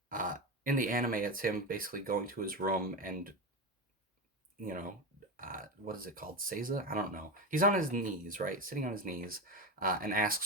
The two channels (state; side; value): normal; both; correlation 0.17